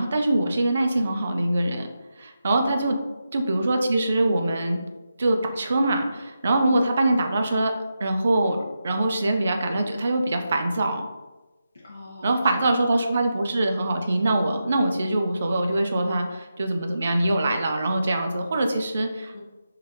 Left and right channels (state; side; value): inverted; both; correlation -0.88